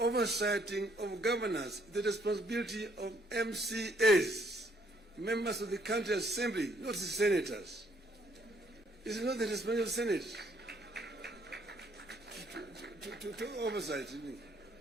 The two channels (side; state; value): both; normal; correlation 0.67